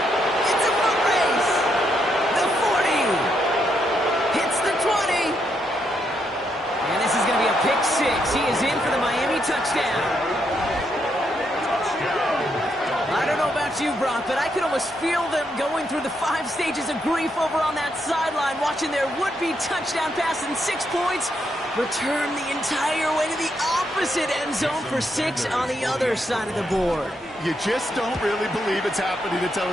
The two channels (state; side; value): normal; both; correlation 0.78